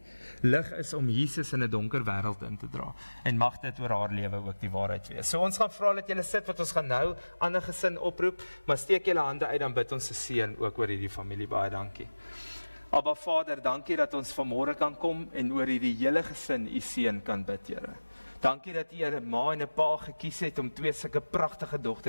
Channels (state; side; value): inverted; both; correlation -1.00